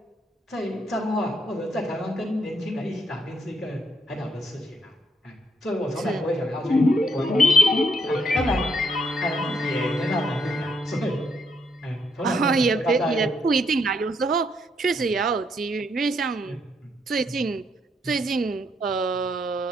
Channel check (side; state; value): both; normal; correlation 0.75